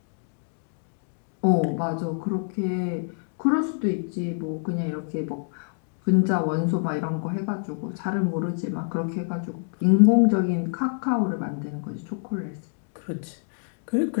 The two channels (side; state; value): right; silent; 57 dB below the other